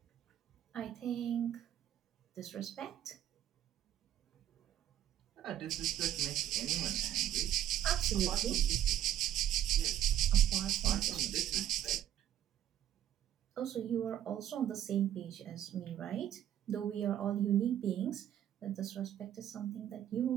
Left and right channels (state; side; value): quieter; left; 11.3 dB